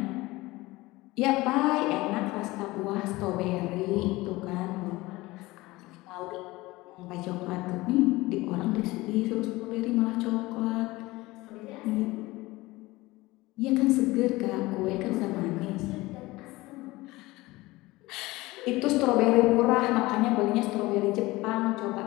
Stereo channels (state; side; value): quieter; right; 20.3 dB